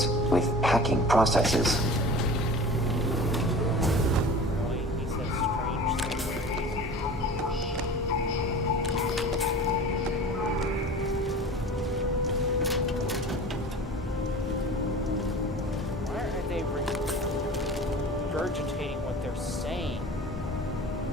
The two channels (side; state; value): both; normal; correlation 0.39